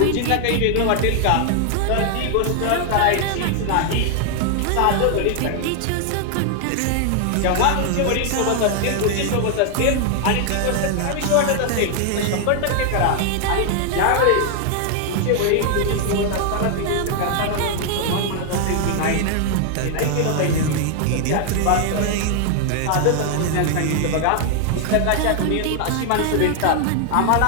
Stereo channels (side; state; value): both; different; correlation 0.00